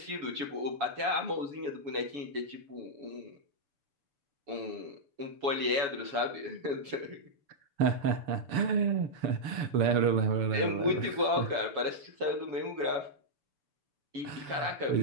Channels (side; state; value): left; late; 6.9 ms